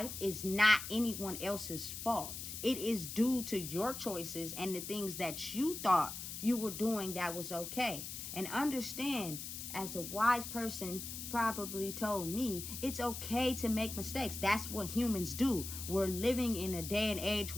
is not anyone else's fault. It is due to your choices and the things that you thought you were doing that was okay. And understand, as a wise person probably told me, it's okay to make mistakes. That's what humans do. We're living in a day and age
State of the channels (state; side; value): noise; left; hiss, 7 dB below the sound